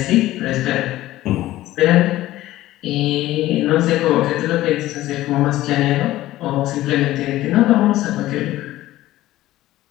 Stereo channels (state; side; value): quieter; right; 15.6 dB